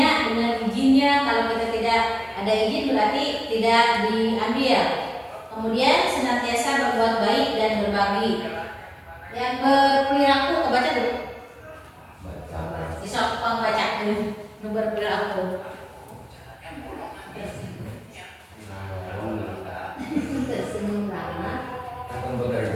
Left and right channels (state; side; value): identical; both; correlation 1.00